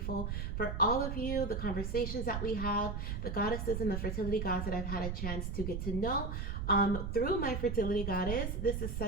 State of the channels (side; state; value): right; noise; rumble, 3 dB below the sound